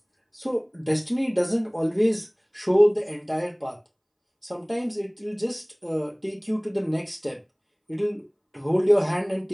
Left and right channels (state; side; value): identical; both; correlation 1.00